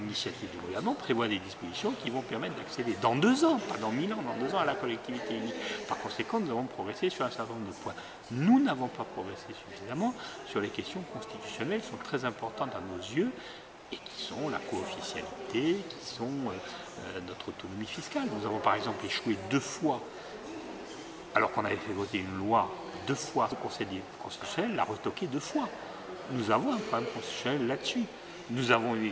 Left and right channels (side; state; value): both; identical; correlation 1.00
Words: du gouvernement, prévoit des dispositions qui vont permettre d'accéder dans 2 ans, pas dans 1000 ans, dans 2 ans à la collectivité unique. Par conséquent, nous avons progressé sur un certain nombre de points. Nous n'avons pas progressé suffisamment sur les questions constitutionnelles qui sont très importantes à nos yeux et qui sont la co-officialité, qui sont notre autonomie fiscale. Nous avons par exemple échoué 2 fois, alors qu'on avait fait voter une loi 2 fois, le Conseil constitutionnel l'a retoqué 2 fois. Nous avons un problème constitutionnel là-dessus. Nous avons eu